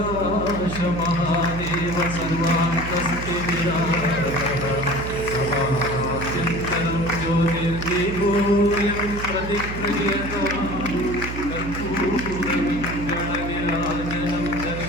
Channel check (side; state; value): right; noise; hum, 7 dB below the sound